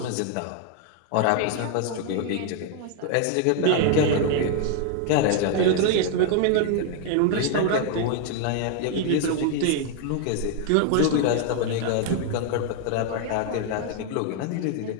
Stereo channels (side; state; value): both; different; correlation 0.00